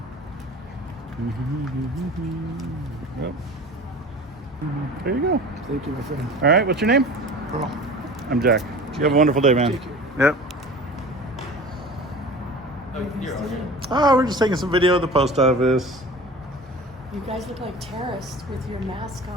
Yep. There you go. Thank you, my friend. All right, what's your name? Earl. I'm Jack. You have a wonderful day, man. Take care. Yep. You're okay. Oh, we're just taking some video of the post office. You guys look like terrorists with your mask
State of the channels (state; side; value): normal; both; correlation 0.38